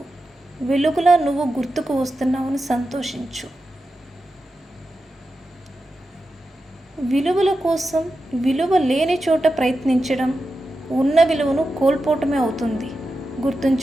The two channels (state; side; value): normal; both; correlation 0.90